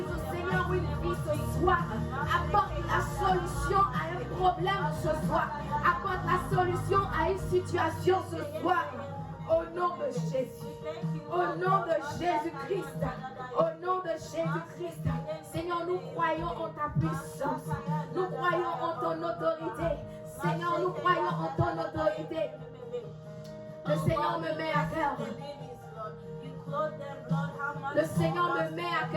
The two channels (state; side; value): identical; both; correlation 1.00